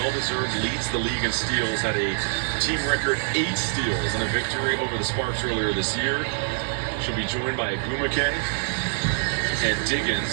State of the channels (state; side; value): silent; left; digital silence